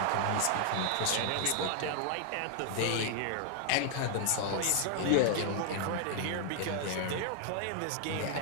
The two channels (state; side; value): different; both; correlation 0.00